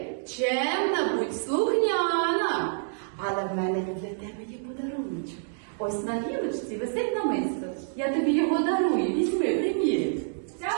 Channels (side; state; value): left; silent; digital silence